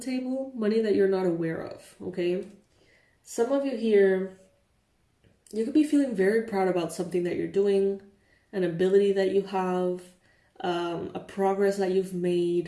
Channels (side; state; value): both; identical; correlation 1.00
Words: money that you're not aware of, okay? Some of you here, you could be feeling very proud about something that you're doing, an ability that you have, a progress that you've